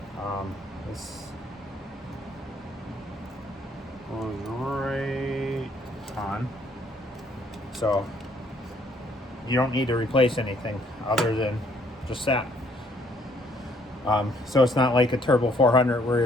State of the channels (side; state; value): both; normal; correlation 0.66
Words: This goes right on. So you don't need to replace anything other than just that. So it's not like a Turbo 400